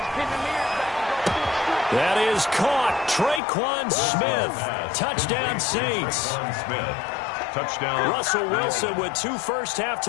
That is caught. Traquan Smith. Touchdown Saints. Touchdown. Russell Wilson with 2 first-half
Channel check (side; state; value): right; drops out; at 3.4 s